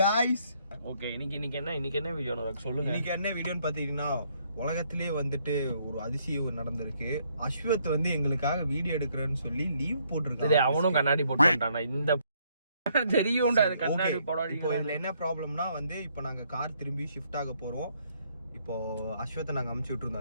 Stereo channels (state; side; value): inverted; both; correlation -0.70